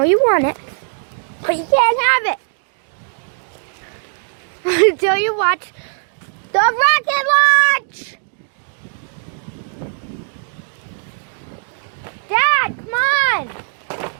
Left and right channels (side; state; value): left; silent; digital silence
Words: you want it, but you can't have it until you watch the rocket launch. Dad, come on!